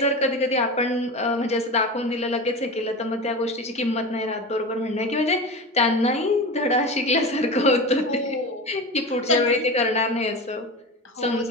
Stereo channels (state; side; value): normal; both; correlation 0.27